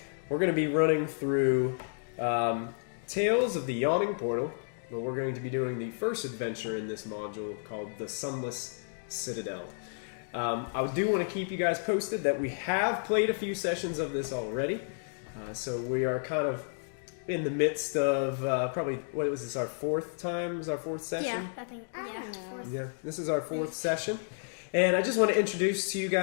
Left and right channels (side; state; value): right; silent; digital silence